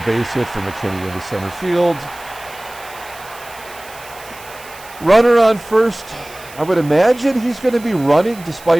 base hit for McKINNEY into center field. Runner on first. I would imagine he's going to be running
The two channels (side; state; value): right; noise; hiss, 19 dB below the sound